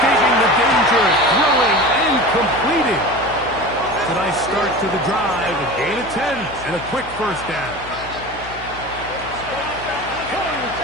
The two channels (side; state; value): left; noise; hum, 16 dB below the sound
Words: the danger, throwing and completing. It's a nice start to the drive, a gain of 10, and a quick 1st down.